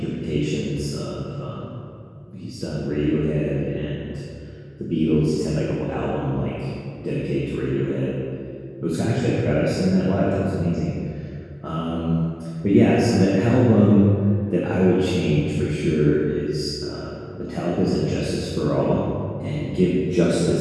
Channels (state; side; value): identical; both; correlation 1.00